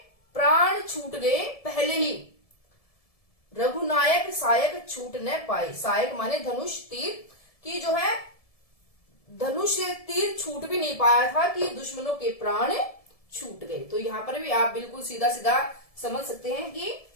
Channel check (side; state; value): right; late; 1.7 ms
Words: प्राण छूट गए पहले ही, रघुनायक सायक छूट न पाए। सायक माने धनुष तीर, की जो है धनुष तीर छूट भी नहीं पाया था कि दुश्मनों के प्राण छूट गए। तो यहाँ पर भी आप बिल्कुल सीधा सीधा समझ सकते हैं कि